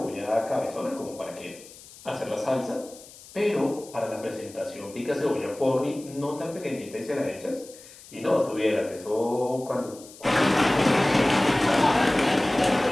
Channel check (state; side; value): noise; left; hiss, 20 dB below the sound